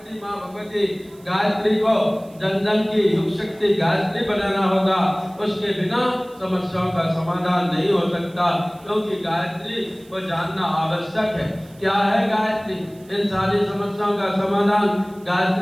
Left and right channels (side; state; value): right; noise; hiss, 28 dB below the sound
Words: मां भगवती गायत्री को जन जन की युग शक्ति गायत्री बनाना होगा। उसके बिना समस्याओं का समाधान नहीं हो सकता, क्योंकि गायत्री को जानना आवश्यक है। क्या है गायत्री? इन सारी समस्याओं का समाधान